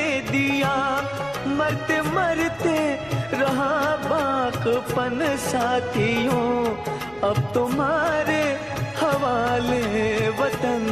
दिया। मरते मरते रहा बाकपन साथियों, अब तुम्हारे हवाले वतन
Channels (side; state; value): left; noise; rumble, 26 dB below the sound